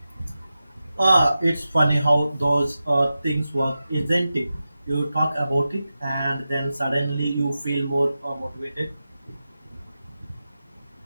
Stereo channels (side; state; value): both; inverted; correlation -0.92